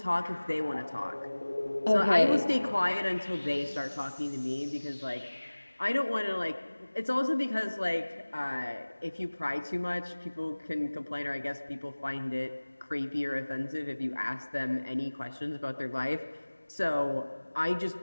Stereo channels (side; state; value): both; inverted; correlation -1.00